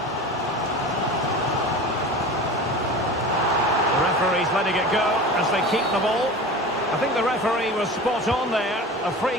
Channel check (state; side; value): normal; both; correlation 0.34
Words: The referee's letting it go as they keep the ball. I think the referee was spot on there. A